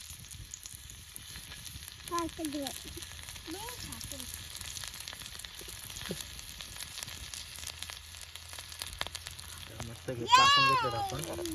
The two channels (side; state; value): both; identical; correlation 1.00